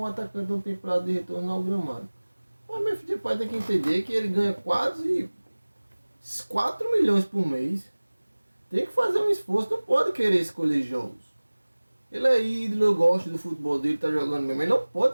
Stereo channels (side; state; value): both; inverted; correlation -1.00